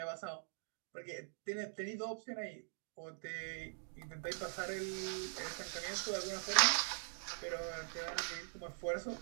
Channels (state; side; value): silent; left; digital silence